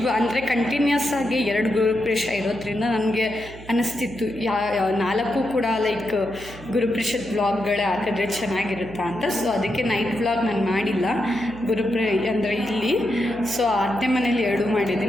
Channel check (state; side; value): noise; right; hum, 17 dB below the sound